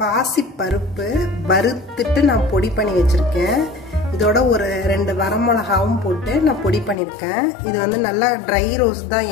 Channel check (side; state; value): right; drops out; at 7.0 s